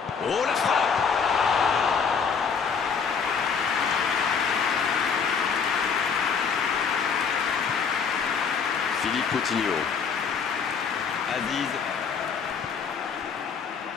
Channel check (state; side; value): quieter; right; 6.1 dB